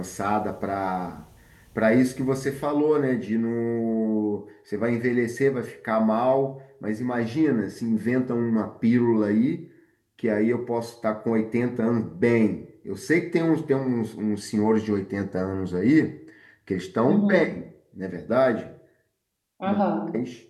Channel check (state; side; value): identical; both; correlation 1.00